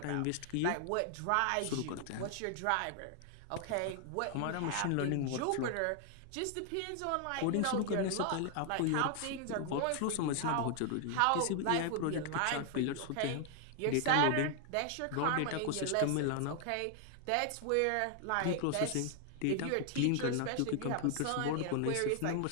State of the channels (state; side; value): different; both; correlation 0.00